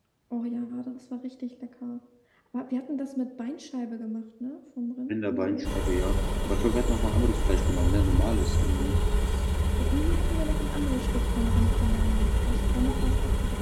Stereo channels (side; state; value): both; identical; correlation 1.00